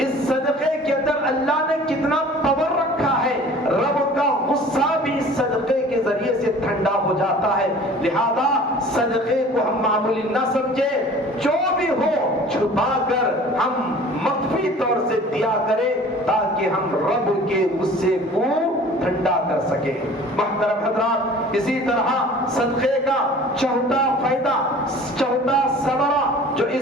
صدقے کے اندر اللہ نے کتنا پاور رکھا ہے، رب کا غصہ بھی اس صدقے کے ذریعے سے ٹھنڈا ہو جاتا ہے۔ لہذا صدقے کو ہم معمولی نہ سمجھیں، جو بھی ہو چھپا کر ہم مخفی طور سے دیا کریں تاکہ ہم رب کے غصے کو ٹھنڈا کر سکیں۔ محترم حضرات، اسی طرح صدقے کا چوتھا فائدہ، چوتھا ثمرہ جو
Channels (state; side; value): normal; both; correlation 0.46